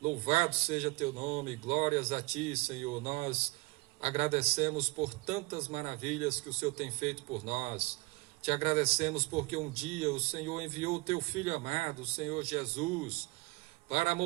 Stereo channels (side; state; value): left; quieter; 23.7 dB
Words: Louvado seja Teu nome, glórias a Ti, Senhor. Nós agradecemos por tantas maravilhas que o Senhor tem feito por nós. Te agradecemos porque um dia o Senhor enviou o Teu Filho amado, o Senhor Jesus, para